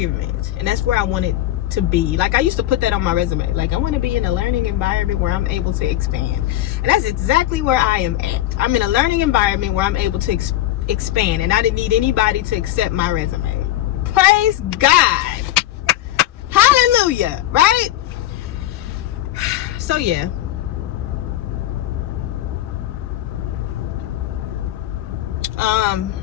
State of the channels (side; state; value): right; quieter; 14.1 dB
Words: and that's where I want it to be. Like, I used to put that on my resume, like I want to be in a learning environment where I'm able to expand, and that's exactly where I am at. I'm in a learning environment where I'm able to expand, and I didn't need anybody to accept my resume. Praise God, hallelujah, right? So yeah, I